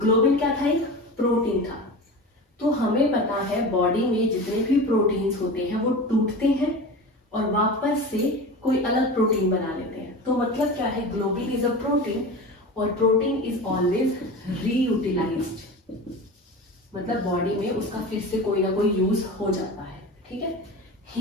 क्या था? एक प्रोटीन था। तो हमें पता है बॉडी में जितने भी प्रोटीन्स होते हैं वो टूटते हैं और वापस से कोई अलग प्रोटीन बना लेते हैं। तो मतलब क्या है? ग्लोबिन इज अ प्रोटीन और प्रोटीन इज ऑलवेज रीयूटिलाइज्ड, मतलब बॉडी में उसका फिर से कोई ना कोई यूज हो जाता है, ठीक है।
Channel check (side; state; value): both; normal; correlation 0.31